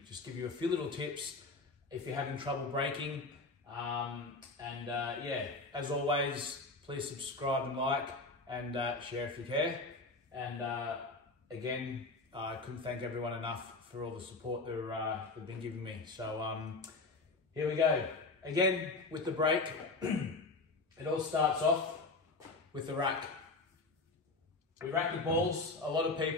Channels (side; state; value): right; quieter; 3.5 dB